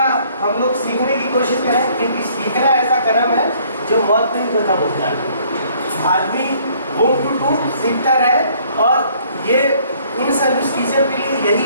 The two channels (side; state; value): both; inverted; correlation -0.61